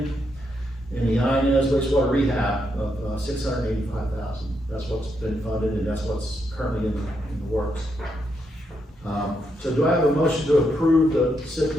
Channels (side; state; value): both; normal; correlation 0.80